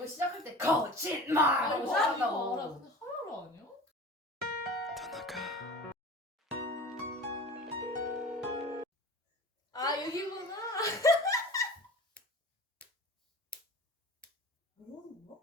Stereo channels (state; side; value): normal; both; correlation 0.38